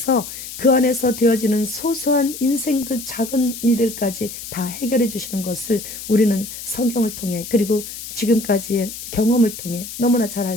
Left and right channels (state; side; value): noise; left; hiss, 10 dB below the sound